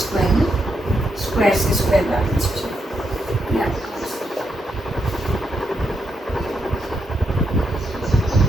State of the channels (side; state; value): both; normal; correlation 0.81